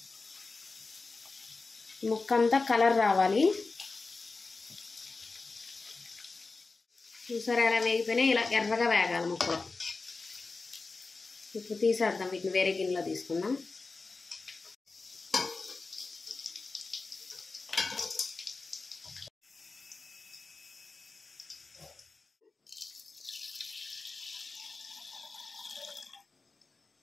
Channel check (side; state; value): right; quieter; 3.9 dB